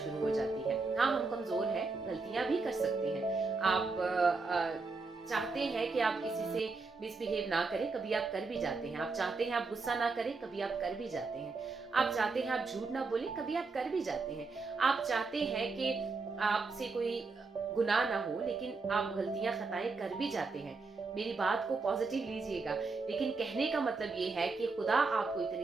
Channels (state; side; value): quieter; left; 4.1 dB